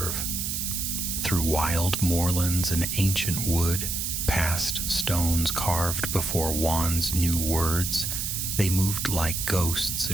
Through wild moorlands and ancient wood, past stones carved before wands knew words, they moved like ghosts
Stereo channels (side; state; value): right; noise; hiss, 2 dB below the sound